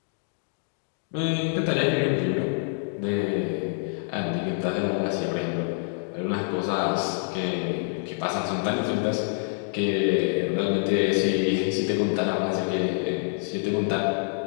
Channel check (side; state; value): right; silent; digital silence